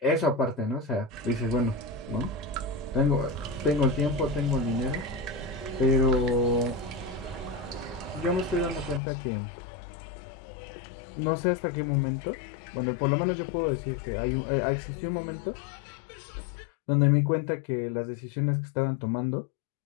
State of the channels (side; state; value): right; drops out; at 9.0 s